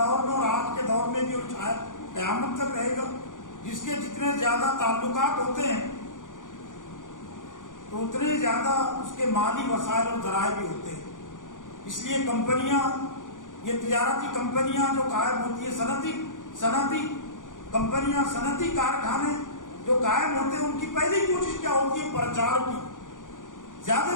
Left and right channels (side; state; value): right; late; 0.88 ms